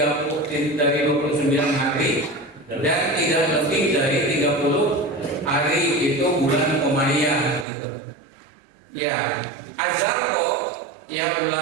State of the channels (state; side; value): drops out; left; at 7.7 s